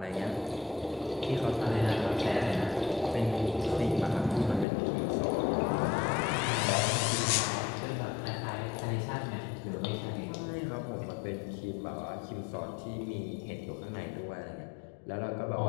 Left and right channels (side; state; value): right; drops out; at 4.7 s